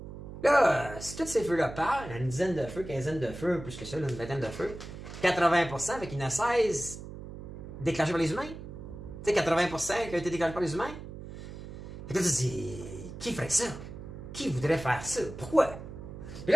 Là, si tous ces feux-là partent, il y a une dizaine de feux, quinzaine de feux, plus que ça, là, une vingtaine de feux, 80%, fait qu'il y en a 16 déclenchés par les humains. Tu sais, 80% qui ont été déclenchés par les humains. Fait que là, tu te dis, qui ferait ça? Qui voudrait faire ça? Pourquoi? Puis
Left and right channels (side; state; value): right; noise; hum, 11 dB below the sound